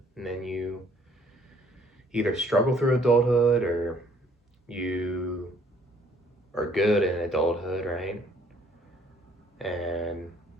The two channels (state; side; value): normal; both; correlation 0.61